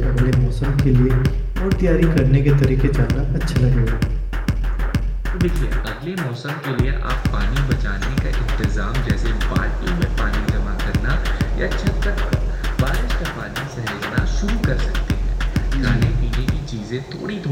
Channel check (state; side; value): identical; both; correlation 1.00